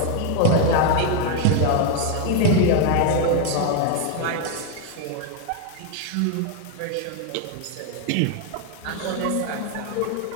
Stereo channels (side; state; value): both; different; correlation 0.01